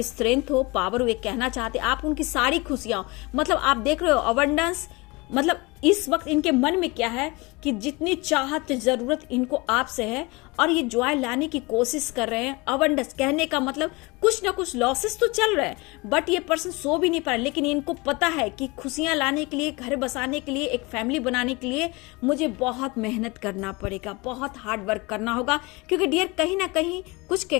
स्ट्रेंथ हो, पावर हो, ये कहना चाहते हैं, आप उनकी सारी खुशियां हो। मतलब आप देख रहे हो अबंडेंस, मतलब इस वक्त इनके मन में क्या है कि जितनी चाहत, जरूरत इनको आपसे है और ये जॉय लाने की कोशिश कर रहे हैं। अबंडेंस कहने का मतलब कुछ ना कुछ लॉसेस तो चल रहे हैं, बट ये पर्सन सो भी नहीं पा रहा। लेकिन इनको पता है कि खुशियां लाने के लिए, घर बसाने के लिए, एक फैमिली बनाने के लिए मुझे बहुत मेहनत करना पड़ेगा, बहुत हार्ड वर्क करना होगा। क्योंकि डियर कहीं ना कहीं कुछ के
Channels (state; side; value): quieter; right; 25.1 dB